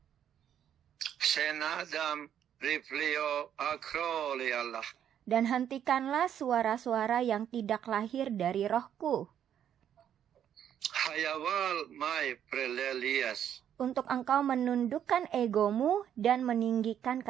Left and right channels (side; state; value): left; quieter; 9.6 dB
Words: Senadam riplio akroli Allah. Dan hentikanlah suara-suara yang tidak lahir dari rohku, Hayawal mai prelelias. untuk engkau menundukkan egomu dan meninggikan